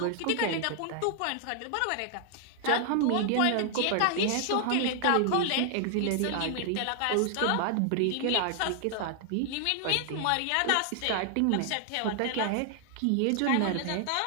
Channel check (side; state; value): both; different; correlation 0.00